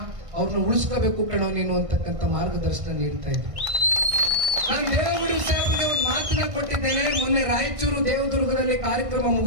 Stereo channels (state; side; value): late; left; 1.6 ms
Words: ಅವ್ರನ್ನ ಉಳಿಸ್ಕೋಬೇಕು ಕಣೋ ನೀನು ಅಂತಕ್ಕಂಥ ಮಾರ್ಗದರ್ಶನ ನೀಡ್ತಾ ಇದ್ದೆ. ನಾನು ದೇವೇಗೌಡರು ಸಾಹೇಬರಿಗೆ ಒಂದು ಮಾತನ್ನ ಕೊಟ್ಟಿದ್ದೇನೆ. ಮೊನ್ನೆ ರಾಯಚೂರು ದೇವದುರ್ಗದಲ್ಲಿ ಕಾರ್ಯಕ್ರಮ